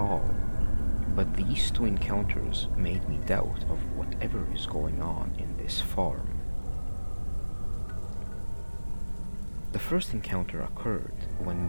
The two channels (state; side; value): inverted; both; correlation -1.00